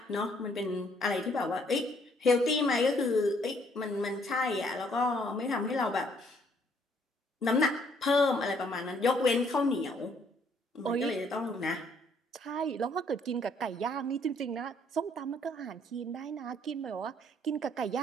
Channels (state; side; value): normal; both; correlation 0.65